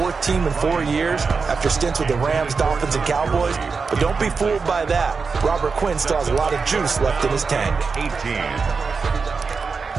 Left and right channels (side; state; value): left; quieter; 4.9 dB